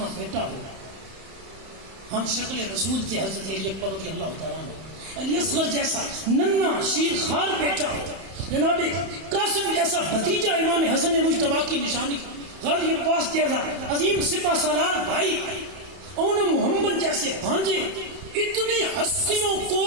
بیٹا ہو، ہم شکل رسول تھے حضرت علی اکبر رضی اللہ تعالیٰ عنہ. علی اصغر جیسا ننا شیر خار بیٹا ہو، جناب قاسم جیسا بھتیجا امام حسن مجتبی کی نشانی، غازی عباس جیسا عظیم سپہ سالار بھائی، اون محمد جیسے بھانجے، اتنی ہستیوں کو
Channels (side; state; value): left; late; 31 ms